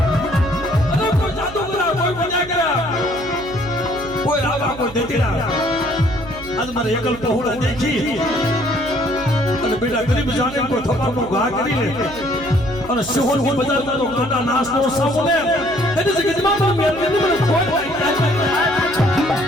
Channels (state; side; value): noise; right; hum, 15 dB below the sound